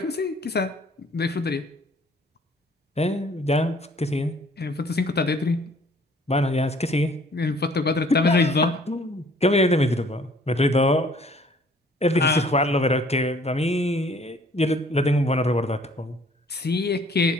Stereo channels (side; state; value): both; normal; correlation 0.57